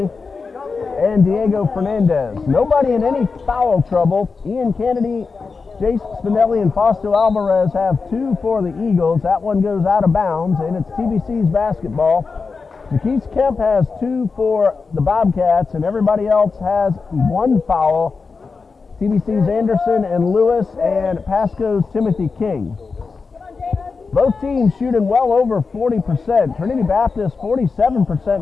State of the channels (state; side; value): quieter; right; 4.7 dB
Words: and Diego Fernandez. Nobody in any foul trouble. Ian Kennedy, Jace Spinelli, and Fausto Alvarez have 2 for the Eagles. That one goes out of bounds, and it's TBC's basketball. Jakesi Kemp has 2 for the Bobcats, and everybody else has 1 foul. TBC's Anderson and Lewis, and Pasco's Timothy King. Both teams shooting well over 40%. Trinity Baptist 47%